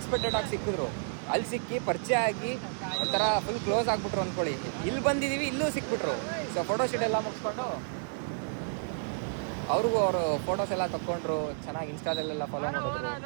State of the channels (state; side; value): silent; left; digital silence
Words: ಆಗಿ ಸಿಕ್ಕಿದ್ರು. ಅಲ್ಲಿ ಸಿಕ್ಕಿ ಪರಿಚಯ ಆಗಿ ಒಂಥರ ಫುಲ್ ಕ್ಲೋಸ್ ಆಗಿಬಿಟ್ರು ಅಂದ್ಕೊಳ್ಳಿ. ಇಲ್ಲಿ ಬಂದಿದ್ದೀವಿ, ಇಲ್ಲೂ ಸಿಕ್ಬಿಟ್ರು. ಸೊ ಫೋಟೋ ಶೂಟ್ ಎಲ್ಲ ಮುಗಿಸ್ಕೊಂಡು ಅವ್ರಿಗೂ ಅವರು ಫೋಟೋಸ್ ಎಲ್ಲ ತಗೊಂಡ್ರು. ಚೆನ್ನಾಗಿ ಇನ್ಸ್ಟಾದಲ್ಲೆಲ್ಲ ಫಾಲೋ